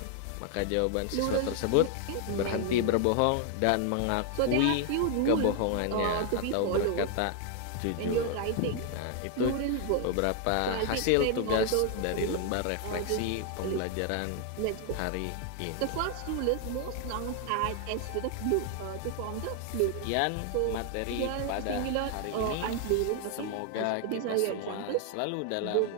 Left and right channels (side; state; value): both; different; correlation 0.00